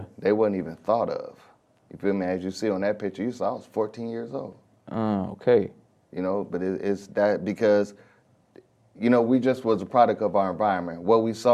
They wasn't even thought of. You feel me? As you see on that picture you saw, I was 14 years old. Okay. You know, but it's that because, you know, we just was a product of our environment. What we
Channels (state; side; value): identical; both; correlation 1.00